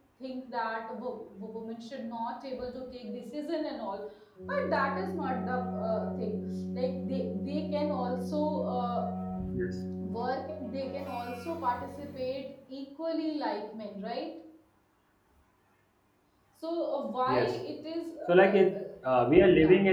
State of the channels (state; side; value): identical; both; correlation 1.00